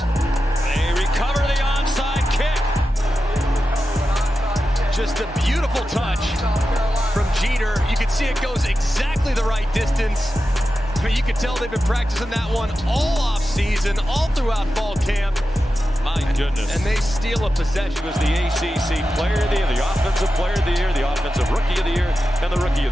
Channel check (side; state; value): both; normal; correlation 0.91